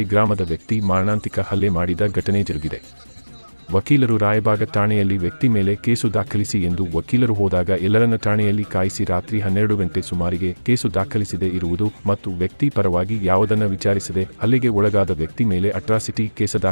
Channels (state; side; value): inverted; both; correlation -1.00